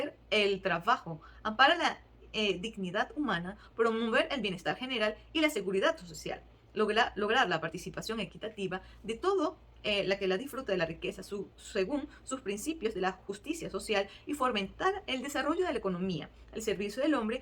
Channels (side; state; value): both; identical; correlation 1.00